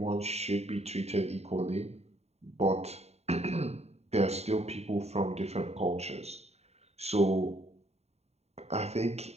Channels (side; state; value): left; late; 0.31 ms